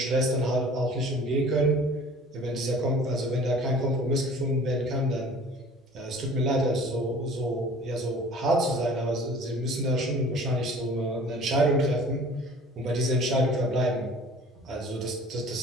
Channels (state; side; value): normal; both; correlation 0.47